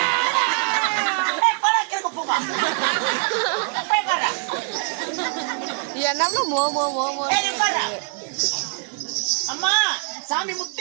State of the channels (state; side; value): quieter; left; 39.0 dB